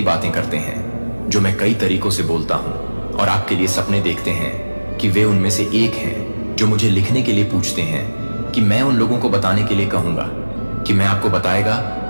बातें करते हैं जो मैं कई तरीकों से बोलता हूं, और आपके लिए सपने देखते हैं कि वे उनमें से एक हैं जो मुझे लिखने के लिए पूछते हैं कि मैं उन लोगों को बताने के लिए कहूंगा कि मैं आपको बताएगा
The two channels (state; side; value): inverted; both; correlation -1.00